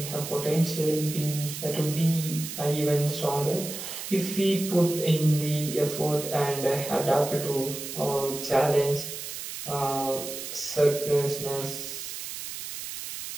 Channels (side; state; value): right; noise; hiss, 8 dB below the sound